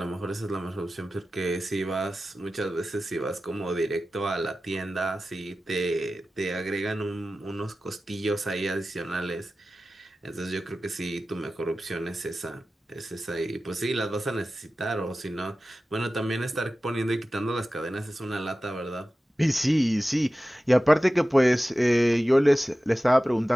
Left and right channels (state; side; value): normal; both; correlation 0.95